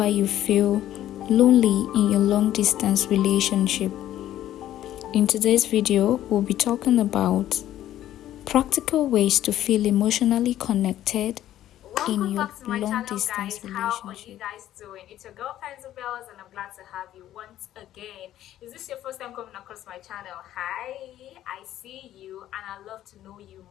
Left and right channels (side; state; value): right; quieter; 12.7 dB